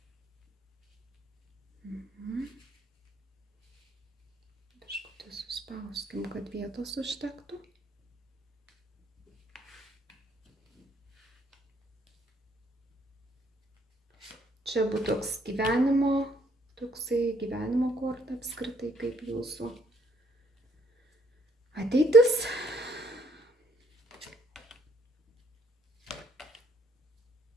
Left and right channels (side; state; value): both; normal; correlation 0.66